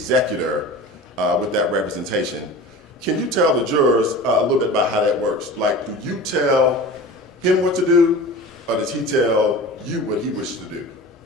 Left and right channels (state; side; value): normal; both; correlation 0.36